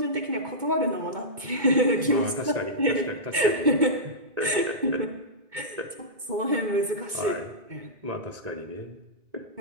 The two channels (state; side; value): late; left; 2.2 ms